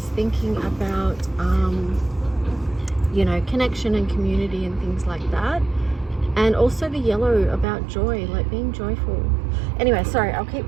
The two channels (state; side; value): drops out; left; at 7.7 s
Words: thinking about you know, connection and community and things like that. And also the yellow about joy, like being joyful. Anyway, sorry, I'll keep